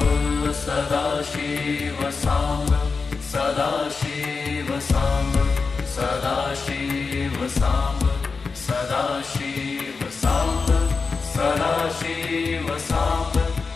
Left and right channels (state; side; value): quieter; right; 4.6 dB